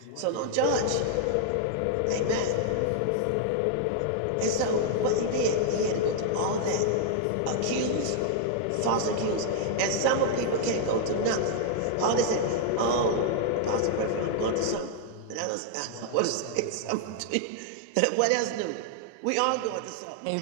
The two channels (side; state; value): both; different; correlation -0.01